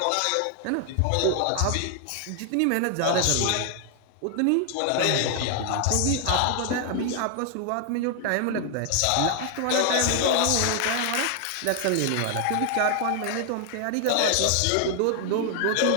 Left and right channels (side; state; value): both; different; correlation 0.00